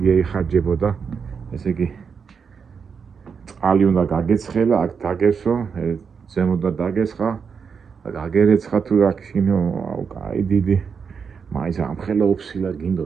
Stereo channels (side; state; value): left; quieter; 6.1 dB